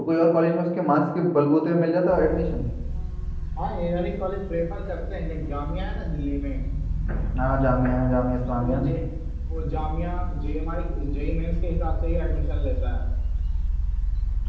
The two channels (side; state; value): both; identical; correlation 1.00